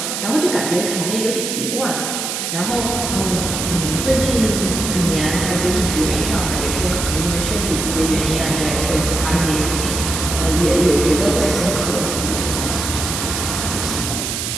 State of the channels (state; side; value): noise; right; hiss, 3 dB below the sound